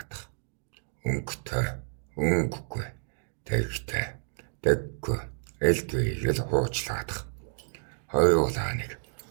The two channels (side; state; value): left; silent; digital silence